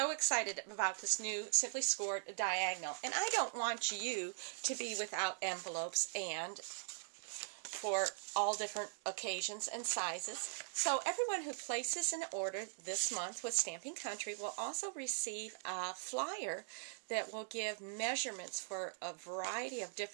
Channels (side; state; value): left; silent; digital silence